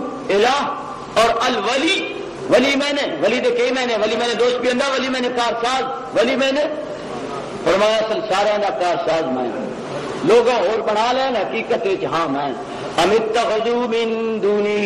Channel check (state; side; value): identical; both; correlation 1.00